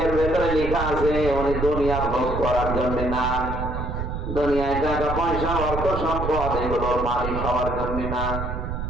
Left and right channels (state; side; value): noise; right; rumble, 4 dB below the sound